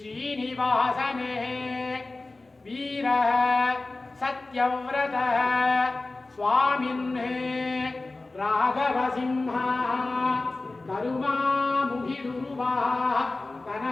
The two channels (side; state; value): right; quieter; 3.2 dB